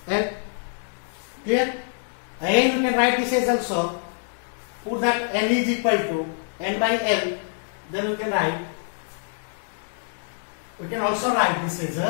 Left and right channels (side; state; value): right; silent; 62 dB below the other